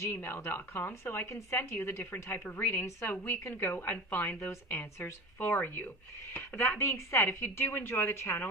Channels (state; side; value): normal; both; correlation 0.32